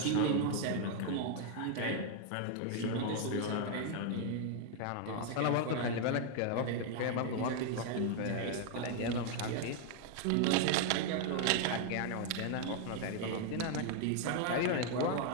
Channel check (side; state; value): both; different; correlation 0.00